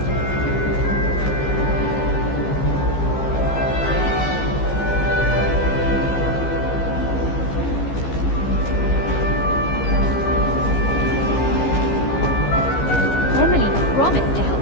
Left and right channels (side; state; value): right; late; 15 ms